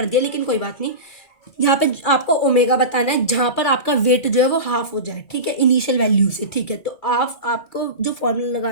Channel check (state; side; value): late; right; 2.4 ms